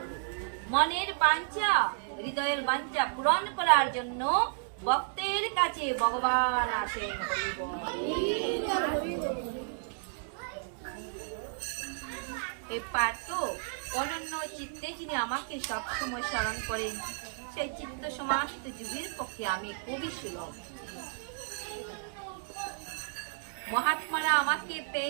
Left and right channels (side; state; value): left; silent; digital silence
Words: মনের বাঞ্ছা, হৃদয়ের বাঞ্ছা পূরণ করার জন্য ভক্তের কাছে ভগবান আসেন। এই পার্থ অনন্য চিত্তে যিনি আমাকে সবসময় স্মরণ করেন সেই চিত্ত সমাহিত যুগের পক্ষে আমি খুবই সুলভ। মহাত্মারা আমাকে